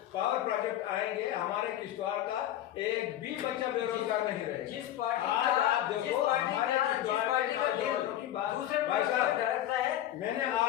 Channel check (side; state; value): right; quieter; 12.7 dB